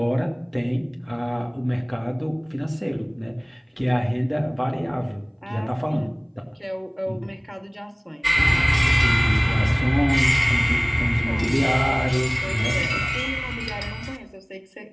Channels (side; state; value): both; identical; correlation 1.00